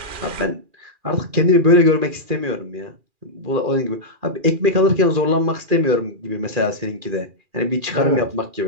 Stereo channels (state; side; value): late; left; 2.4 ms